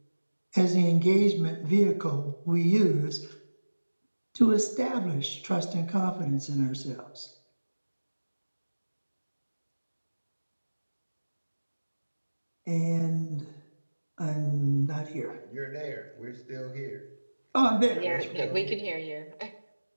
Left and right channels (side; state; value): both; inverted; correlation -1.00